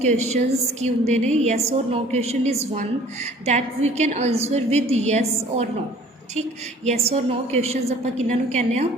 की होंगे ने। यस और no question is one that we can answer with yes और नो। ठीक, यस और नो क्वेश्चनस आप किन्हों कहने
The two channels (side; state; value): both; normal; correlation 0.51